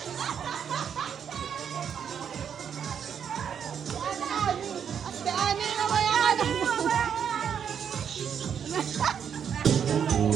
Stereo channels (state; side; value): quieter; left; 7.9 dB